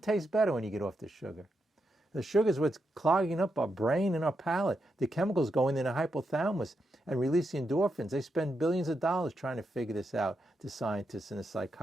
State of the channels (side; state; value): both; normal; correlation 0.84